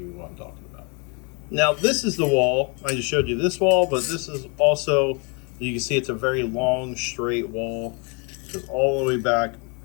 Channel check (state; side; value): quieter; right; 32.9 dB